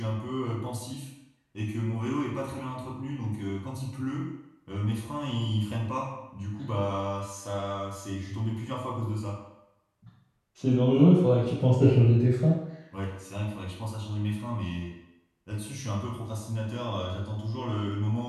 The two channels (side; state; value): both; identical; correlation 1.00